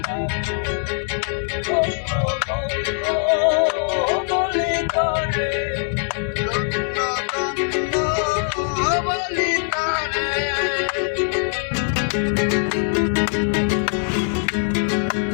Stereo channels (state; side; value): silent; right; 64 dB below the other